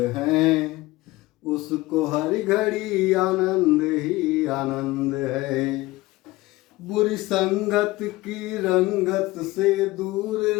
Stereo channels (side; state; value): right; quieter; 19.5 dB